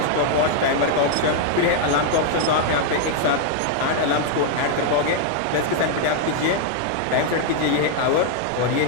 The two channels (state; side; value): different; both; correlation 0.00